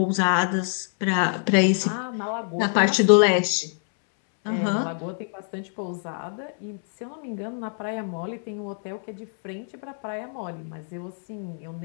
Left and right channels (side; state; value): right; silent; 61 dB below the other